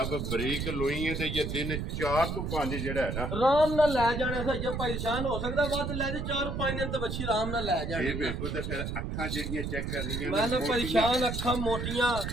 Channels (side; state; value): right; noise; rumble, 3 dB below the sound